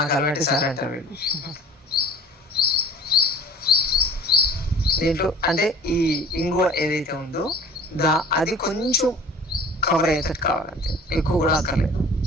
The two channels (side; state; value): both; normal; correlation 0.46